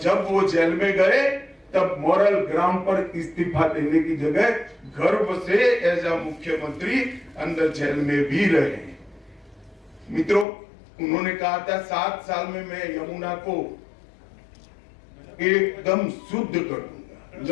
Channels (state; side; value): drops out; right; at 10.5 s